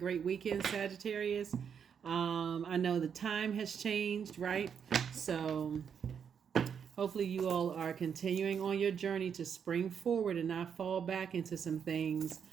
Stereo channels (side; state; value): left; quieter; 7.4 dB